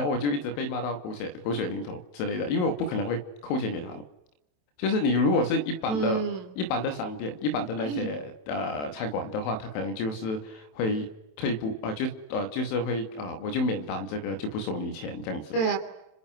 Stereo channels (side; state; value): right; late; 27 ms